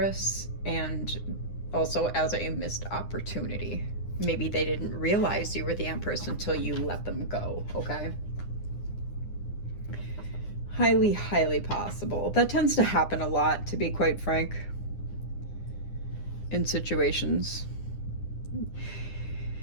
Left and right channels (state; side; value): late; right; 9.8 ms